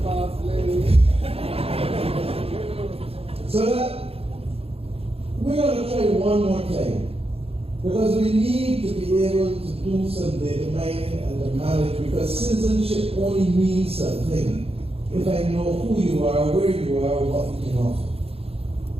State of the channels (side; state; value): left; late; 0.28 ms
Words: So that we're going to try one more time, because we need to be able to do some data mining and to manage, because citizenship only means something if I know who you are, where you are, what you can offer.